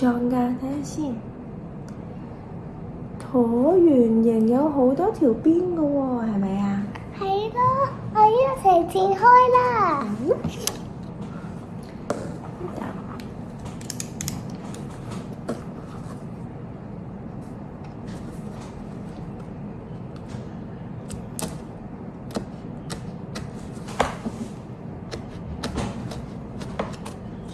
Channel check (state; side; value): identical; both; correlation 1.00